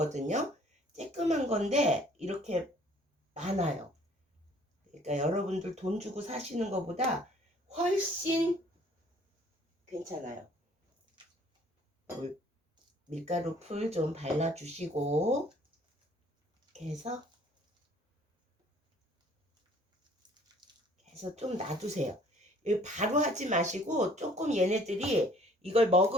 쬐끔한 건데 이렇게 많아요. 그러니까 여러분들 돈 주고 사시는 것보다 훨씬 괜찮아요. 밀가루 풀 좀 발라주시고 이렇게 해서 좀 놔두세요. 바로 하지 마시고 조금 얘네들이 이걸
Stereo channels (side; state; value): both; normal; correlation 0.57